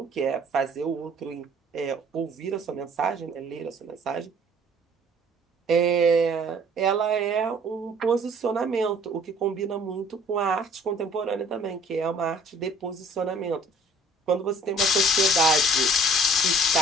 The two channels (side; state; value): both; normal; correlation 0.54